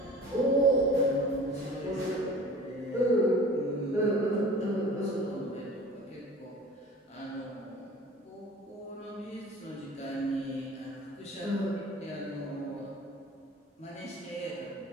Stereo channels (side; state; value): both; normal; correlation 0.43